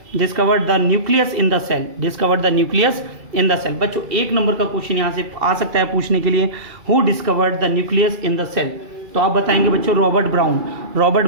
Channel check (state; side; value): late; left; 2.3 ms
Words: discovered the nucleus in the cell. Discovered the nucleus in the cell. बच्चों 1 नंबर का क्वेश्चन यहाँ से आ सकता है पूछने के लिए, who discovered the nucleus in the cell. तो आप बताएंगे बच्चों Robert Brown. Robert